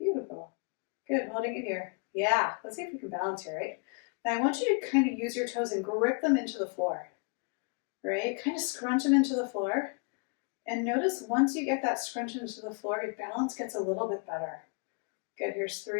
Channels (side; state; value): right; quieter; 36.6 dB